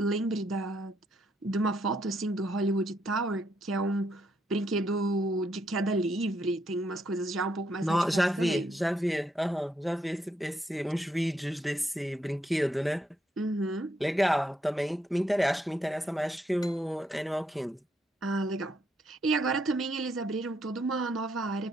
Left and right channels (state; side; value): normal; both; correlation 0.75